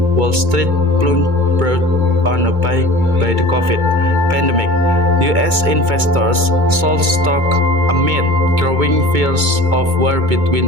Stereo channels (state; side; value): late; left; 2.2 ms